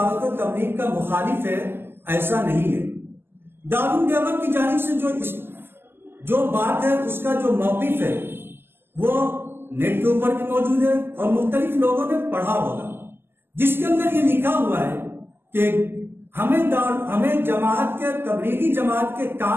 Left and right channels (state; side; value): late; left; 0.11 ms